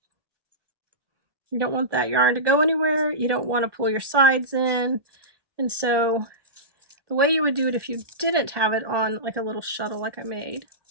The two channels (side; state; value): left; late; 1.1 ms